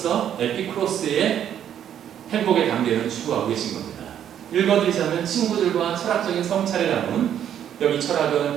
에피쿠로스의 행복의 단계를 추구하고 계신 겁니다. 읽어드리자면 친구들과 철학적인 성찰을 나눈 여기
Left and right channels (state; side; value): quieter; left; 9.8 dB